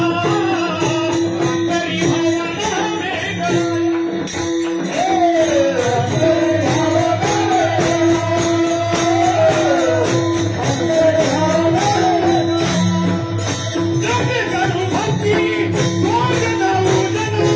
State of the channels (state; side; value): identical; both; correlation 1.00